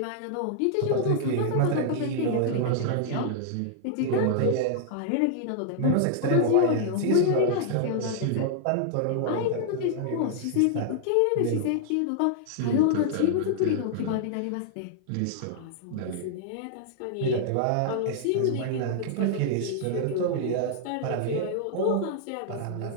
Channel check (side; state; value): both; different; correlation -0.01